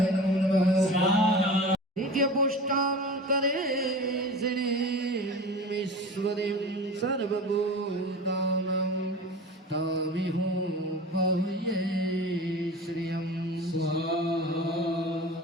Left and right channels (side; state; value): both; normal; correlation 0.34